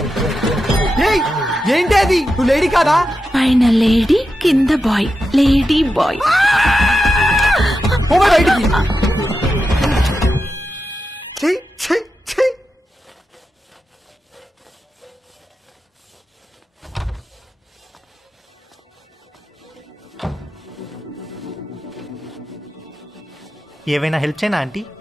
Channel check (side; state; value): both; normal; correlation 0.89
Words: ఏంటి అది? నువ్వు లేడీ కాదా? పైన లేడీ, కింద బాయ్. Lady bye. బయటికి. ఏవైనా హెల్ప్ చేయనా ఆంటీ?